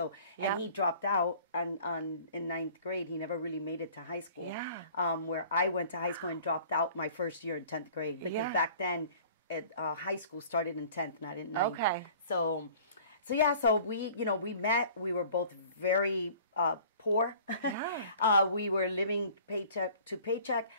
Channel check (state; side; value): inverted; both; correlation -0.49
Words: and he dropped out in ninth grade. He never really made it to high school. Yeah. Where I went to high school and dropped out my first year in 10th grade because back then high school started in 10th, not in 9th. Okay. So we, you know, we met, we were both very poor. We were living paycheck to paycheck.